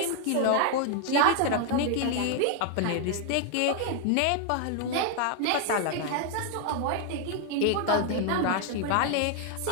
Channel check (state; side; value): different; both; correlation 0.00